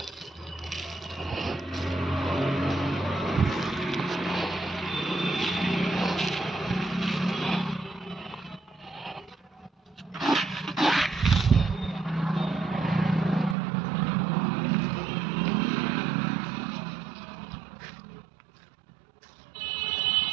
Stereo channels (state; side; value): drops out; left; at 13.6 s